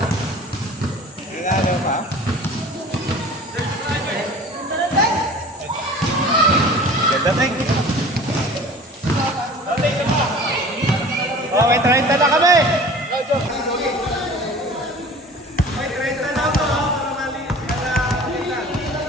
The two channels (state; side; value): normal; both; correlation 0.43